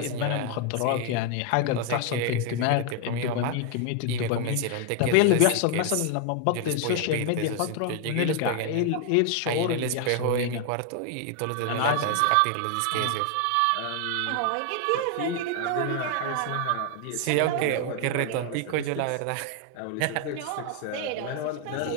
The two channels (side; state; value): both; different; correlation 0.01